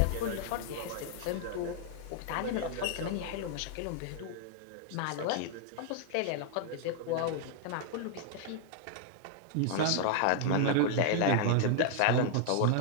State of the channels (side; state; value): both; different; correlation 0.00